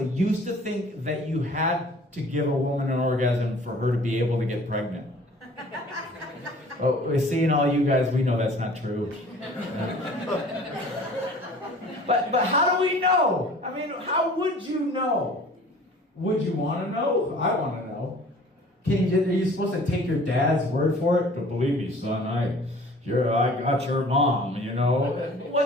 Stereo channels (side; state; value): both; normal; correlation 0.49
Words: used to think that you had to give a woman an orgasm for her to be able to get pregnant. Oh, seeing all you guys, we know that's not true. But how do we know? I mean, how would you know? Would you want to know? I want to know. Are you supposed to take your dad's word for it? But believe me, son, I got your mom, you know.